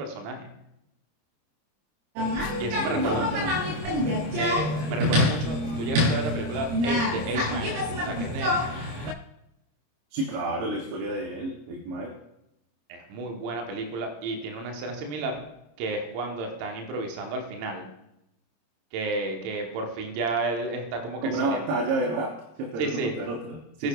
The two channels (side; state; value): left; late; 26 ms